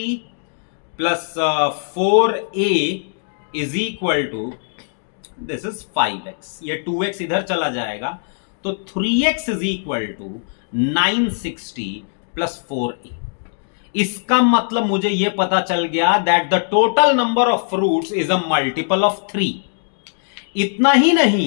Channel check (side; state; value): right; silent; digital silence